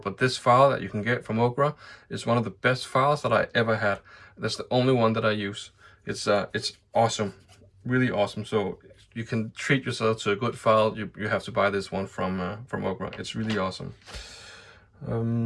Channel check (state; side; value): identical; both; correlation 1.00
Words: this file that you can get from Occre is one of the best files that I ever had. That's the only one that I use. It's awesome, really awesome. So you can treat yourself to a good file. You have to buy this one from Occre. It's really awesome.